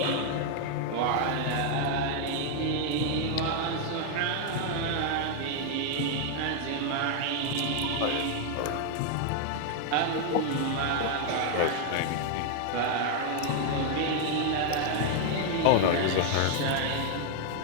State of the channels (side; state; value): both; different; correlation 0.00